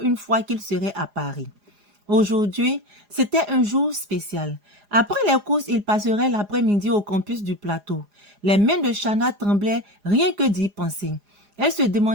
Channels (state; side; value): late; left; 4.9 ms